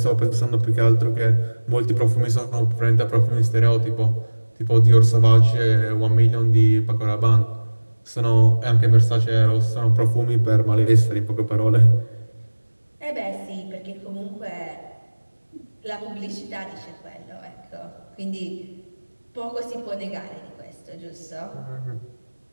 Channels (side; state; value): both; inverted; correlation -1.00